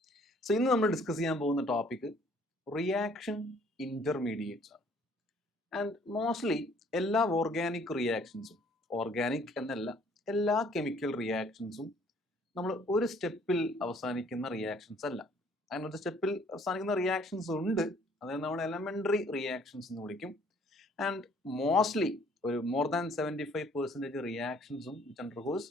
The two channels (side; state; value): both; normal; correlation 0.60